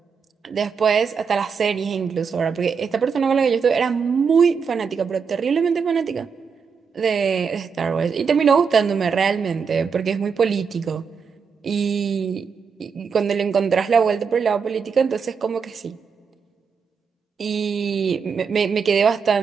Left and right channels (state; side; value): quieter; left; 5.9 dB